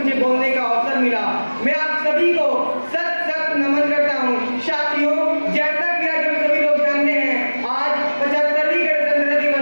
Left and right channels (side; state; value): both; inverted; correlation -1.00